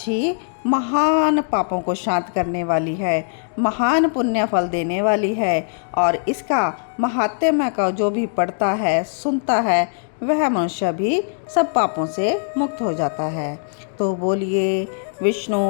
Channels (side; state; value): right; silent; digital silence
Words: महान पापों को शांत करने वाली है, महान पुण्य फल देने वाली है और इसका महात्म्य का जो भी पढ़ता है, सुनता है, वह मनुष्य भी सब पापों से मुक्त हो जाता है। तो बोलिए विष्णु